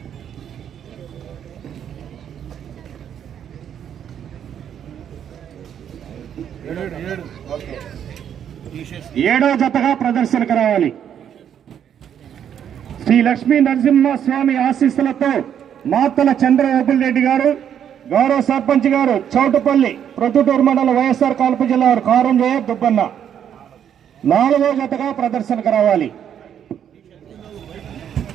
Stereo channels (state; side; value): quieter; left; 9.1 dB